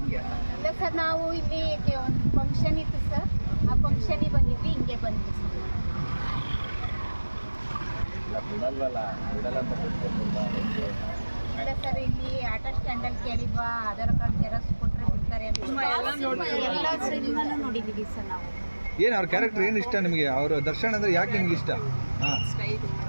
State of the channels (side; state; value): both; inverted; correlation -1.00